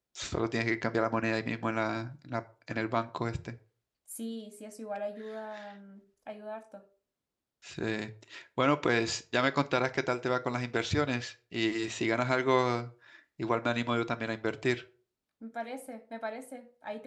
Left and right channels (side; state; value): both; identical; correlation 1.00